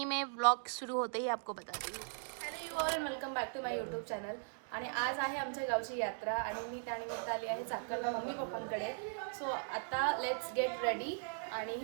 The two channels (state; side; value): silent; left; digital silence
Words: में व्लॉग सुरू होते ही आपको बताती हूँ। Hello you all, welcome back to my YouTube channel. आणि आज आहे आमच्या गावची यात्रा आणि मी त्यानिमित्त आली आहे चाकणला मम्मी पप्पांकडे. सो आता लेट्स गेट रेडी आणि